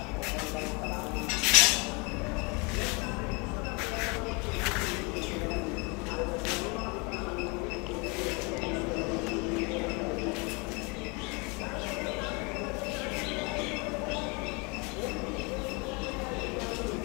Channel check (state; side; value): quieter; right; 30.1 dB